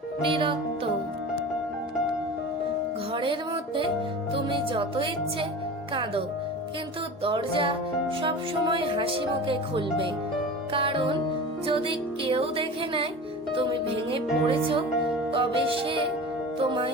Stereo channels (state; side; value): normal; both; correlation 0.34